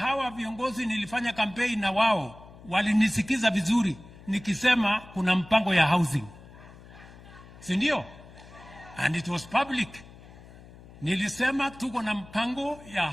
viongozi nilifanya campaign na wao walinisikiza vizuri nikisema kuna mpango ya housing, si ndio? And it was public. Nilisema tuko na mpango ya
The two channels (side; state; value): left; noise; hum, 20 dB below the sound